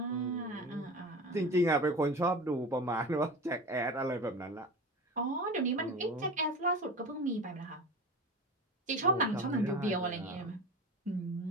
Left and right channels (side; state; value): both; normal; correlation 0.31